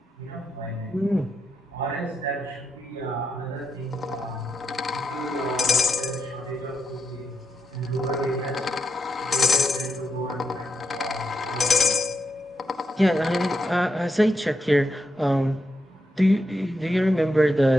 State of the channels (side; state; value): both; normal; correlation 0.84